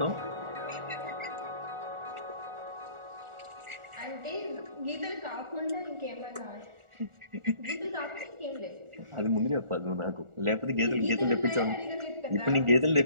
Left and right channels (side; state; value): left; late; 1.4 ms